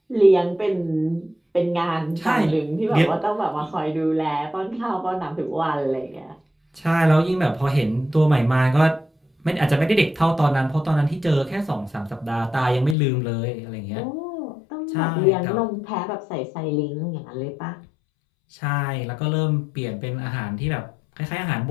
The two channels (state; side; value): drops out; right; at 13.0 s